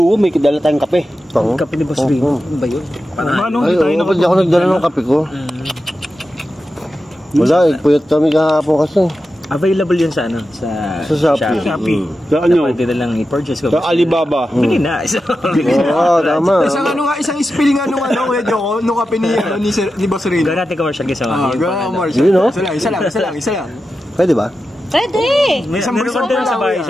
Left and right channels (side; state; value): both; normal; correlation 0.91